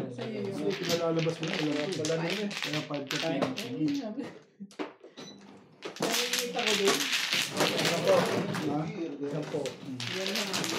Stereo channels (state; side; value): identical; both; correlation 1.00